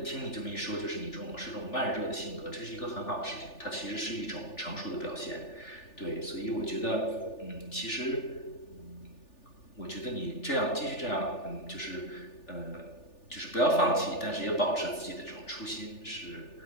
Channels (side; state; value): right; late; 3.4 ms